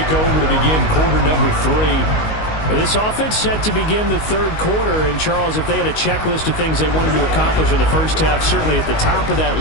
over to begin quarter number 3. This offense set to begin the third quarter, and Charles, if they had a checklist of things they wanted to accomplish in the first half, certainly at the top of that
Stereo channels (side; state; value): right; late; 19 ms